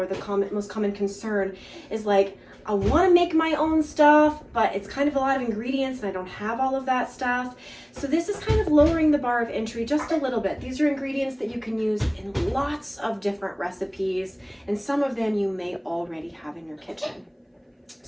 the most common concern, is like, I want to make my own stuff, but it's kind of a lot of ingredients and I don't have all of that stuff. So this is kind of lowering the bar of entry just a little bit. These are ingredients that you can use in lots of different recipes, and some of them you may already have in your kitchen.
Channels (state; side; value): identical; both; correlation 1.00